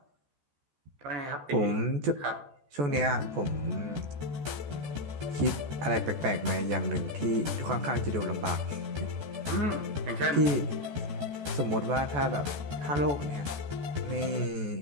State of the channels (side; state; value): left; late; 14 ms